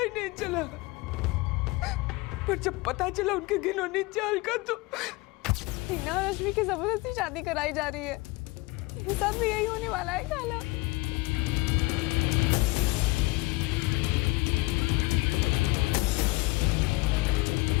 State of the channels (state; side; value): quieter; right; 22.8 dB